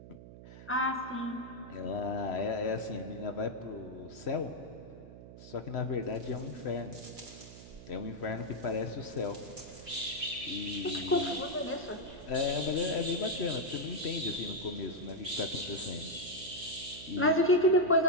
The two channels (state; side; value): noise; right; hum, 15 dB below the sound